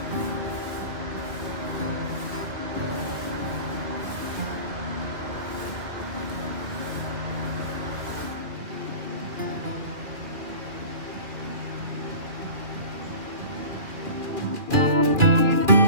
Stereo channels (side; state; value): left; late; 2.4 ms